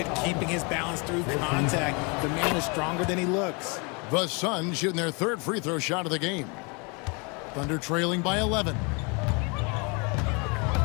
at keeping his balance through contact. The man is stronger than he looks. The Suns shooting their third free throw shot of the game. Thunder trailing by 11.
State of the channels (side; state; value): right; quieter; 31.7 dB